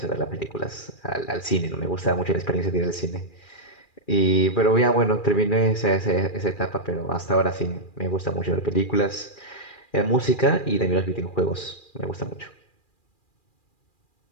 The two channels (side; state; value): right; late; 2.4 ms